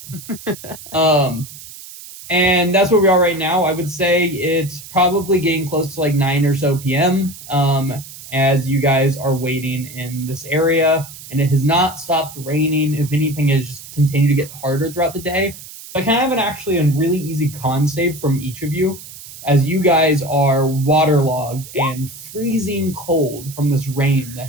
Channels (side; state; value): right; noise; hiss, 15 dB below the sound